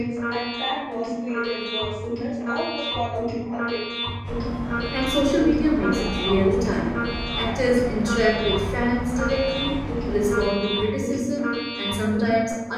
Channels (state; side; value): identical; both; correlation 1.00